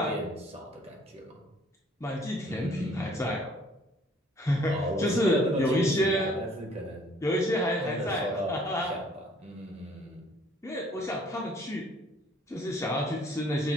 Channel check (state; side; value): normal; both; correlation 0.59